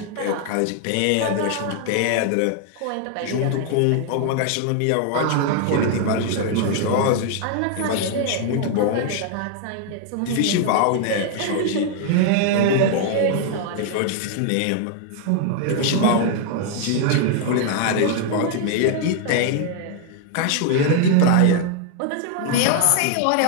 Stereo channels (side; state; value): both; different; correlation 0.00